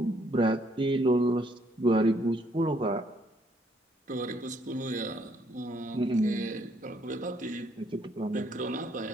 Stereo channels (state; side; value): normal; both; correlation 0.69